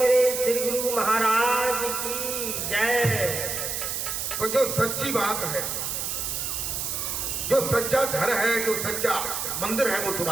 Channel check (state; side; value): noise; right; hiss, 2 dB below the sound